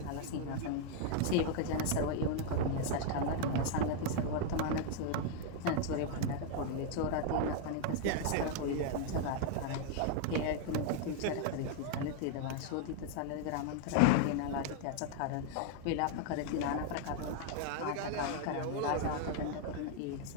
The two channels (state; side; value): different; both; correlation 0.00